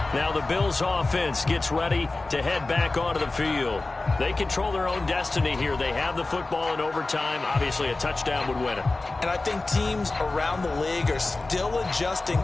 Now the Bills offense gets ready to head back onto the field. They control their own destiny here. They have the football in overtime. Obviously, a touchdown would win it. And I think teams around the league are still adjusting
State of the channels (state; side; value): quieter; right; 3.2 dB